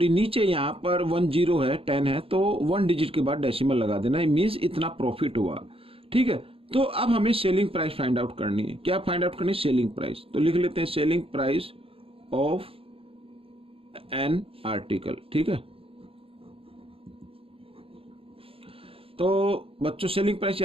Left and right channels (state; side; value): late; left; 0.27 ms